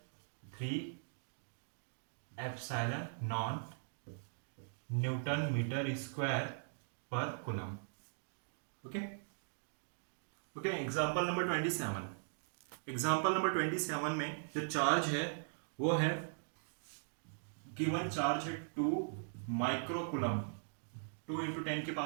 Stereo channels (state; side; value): silent; left; digital silence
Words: 3 epsilon naught newton metre square पर coulomb. Okay okay, example number 27। Example number 27 में जो चार्ज है वो है गिवन चार्ज है 2 माइक्रोकुलम, 2 इंटू